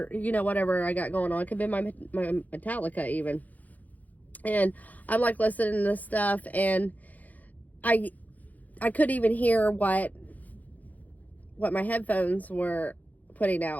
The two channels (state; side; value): late; right; 0.079 ms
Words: whatever I got going on. It could have been my Metallica even. And I'm like listening to this stuff, and I couldn't even hear what my headphones were putting